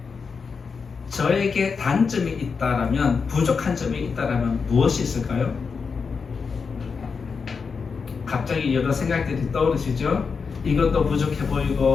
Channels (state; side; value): quieter; right; 5.4 dB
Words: 저에게 단점이 있다라면, 부족한 점이 있다라면 무엇이 있을까요? 갑자기 여러 생각들이 떠오르시죠? 이것도 부족해